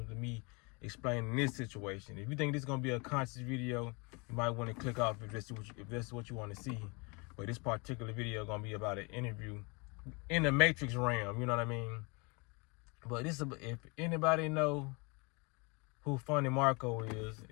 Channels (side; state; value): right; quieter; 30.1 dB